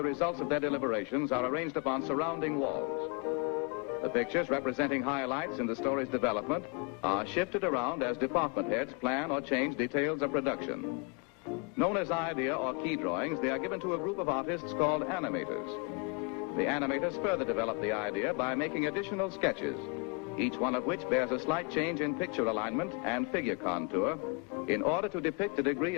results of their deliberations are arranged upon surrounding walls. The pictures representing highlights in the story's development are shifted around as department heads plan or change details of production. Known as idea or key drawings, they are given to a group of artists called animators. The animators further develop the idea by making additional sketches, each one of which bears a slight change in picture alignment and figure contour in order to depict a degree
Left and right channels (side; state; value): right; quieter; 32.6 dB